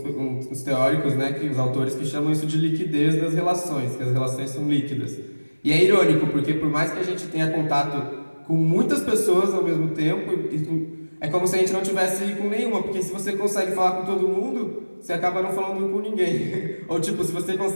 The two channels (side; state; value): both; inverted; correlation -1.00